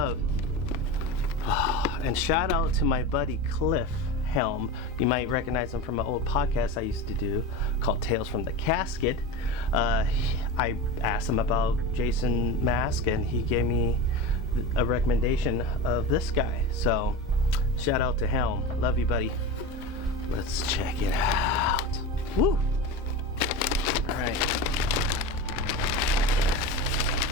And shout out to my buddy Cliff Helm. You might recognize him from an old podcast I used to do called Tales from the Casket. I asked him about Jason mask and he gave me a recommendation of this guy. So shout out to Helm. Love you, buddy. Let's check it out. Woo! Alright.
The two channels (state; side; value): normal; both; correlation 0.26